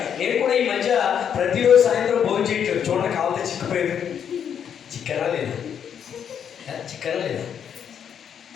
నేను కూడా ఈ మధ్య ప్రతిరోజు సాయంత్రం భోజనం చేయట్లేదు. చూడండి, కావాలంటే చిక్కిపోయేది. చిక్కనా లేదా? చిక్కనా లేదా?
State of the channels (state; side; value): quieter; right; 8.3 dB